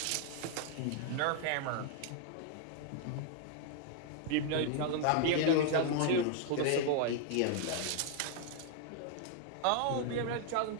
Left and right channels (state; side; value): different; both; correlation 0.00